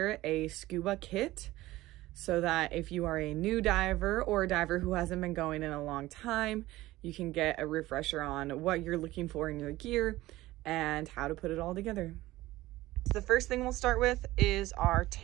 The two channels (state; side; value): quieter; left; 17.4 dB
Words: a scuba kit so that if you are a new diver or a diver who hasn't been going in a long time, you can get a refresher on what you're looking for in your gear and how to put it all together. The first thing we'll start with is our